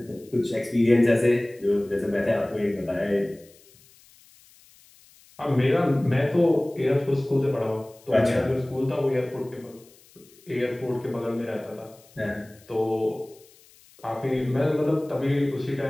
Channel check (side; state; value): left; noise; hiss, 27 dB below the sound